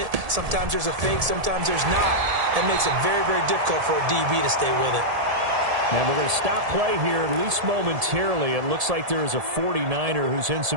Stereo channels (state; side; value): late; left; 1.7 ms